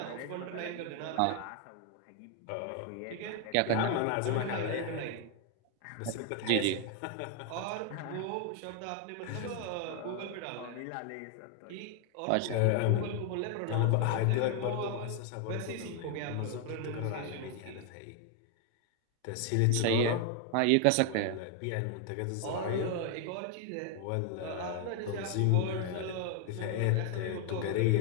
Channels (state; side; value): different; both; correlation 0.00